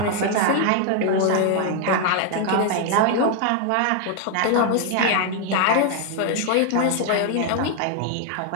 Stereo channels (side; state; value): both; different; correlation 0.00